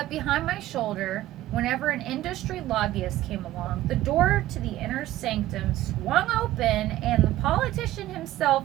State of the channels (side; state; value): left; quieter; 15.0 dB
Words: behind my shoulder, whenever an industry lobbyist came along, the door to the inner sanctum swung open and the politician